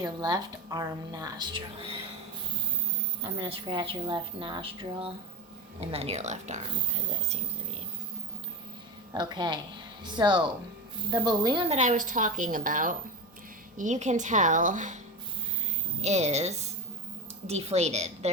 left arm nostril. I'm going to scratch your left nostril and then your left arm, because that seems to be... Okay, so the balloon that I was talking about, you can tell, is deflated.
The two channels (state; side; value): normal; both; correlation 0.20